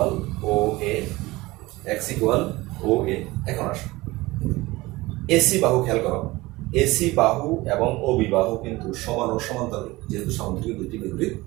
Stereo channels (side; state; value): left; quieter; 20.4 dB